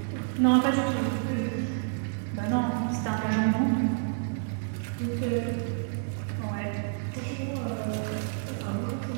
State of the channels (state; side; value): silent; left; digital silence